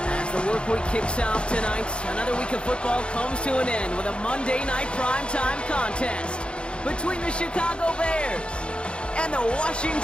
As the work week kicks off tonight, another week of football comes to an end with a Monday Night Primetime contest between the Chicago Bears and the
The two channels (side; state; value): right; late; 0.056 ms